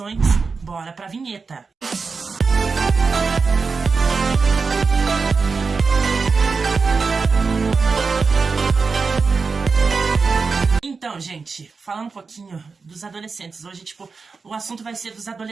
bora pra vinheta! Então, gente, falando um pouquinho dos adolescentes. Hoje, o assunto vai ser dos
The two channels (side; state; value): left; quieter; 4.7 dB